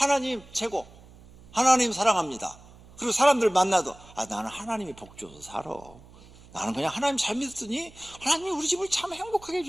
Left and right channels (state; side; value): noise; right; hum, 23 dB below the sound